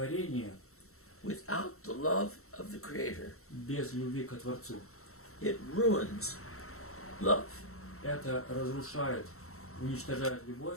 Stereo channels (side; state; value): right; late; 0.63 ms